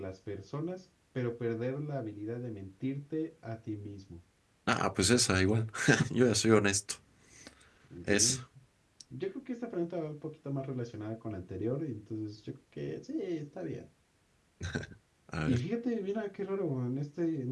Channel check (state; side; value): identical; both; correlation 1.00